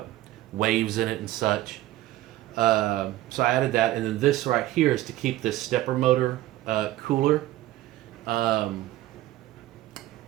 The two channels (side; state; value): left; quieter; 15.7 dB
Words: waves in it and such. So I added that, and then this right here is to keep this stepper motor cooler. When